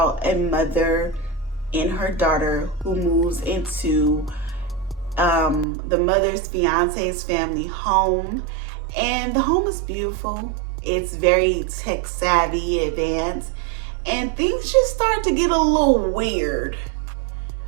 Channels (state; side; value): drops out; left; at 5.7 s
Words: a mother and her daughter who moves into the mother's fiance's family home, and the home is beautiful. It's very tech savvy, advanced, and things just start to get a little weird